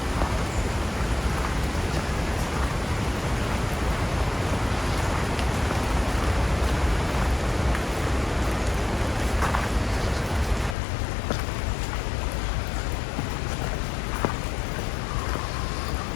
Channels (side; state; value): right; drops out; at 10.8 s